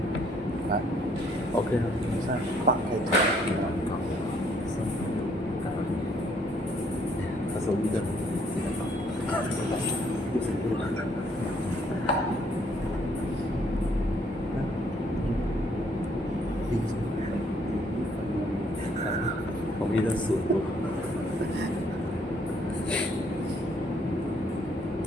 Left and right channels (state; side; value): normal; both; correlation 0.66